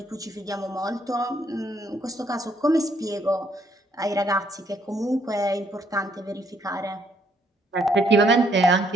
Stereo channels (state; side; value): normal; both; correlation 0.70